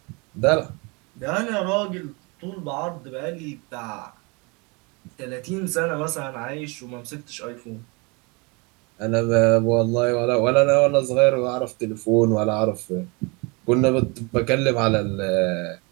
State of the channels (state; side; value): quieter; left; 29.2 dB